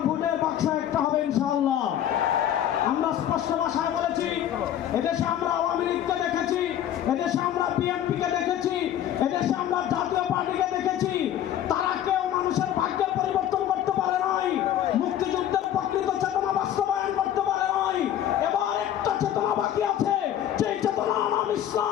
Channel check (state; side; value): quieter; right; 11.0 dB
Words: ভোটের বাক্স একটা হবে ইনশাআল্লাহ। আমরা স্পষ্ট ভাষায় বলেছি, এদেশে আমরা আওয়ামী লীগকে দেখেছি, এদেশে আমরা বিএনপিকে দেখেছি, এদেশে আমরা জাতীয় পার্টিকে দেখেছি। তারা কেউ মানুষের ভাগ্যের পরিবর্তন করতে পারে নাই, মুক্তিযুদ্ধের প্রকৃত চেতনা বাস্তবায়ন করতে পারে নাই। এবার একটা চেতনা বাকি আছে, যেই চেতনার নাম